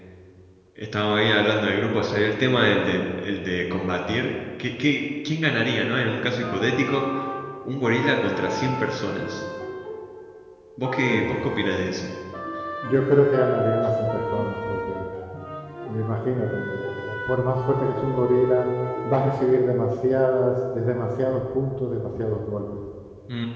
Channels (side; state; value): both; identical; correlation 1.00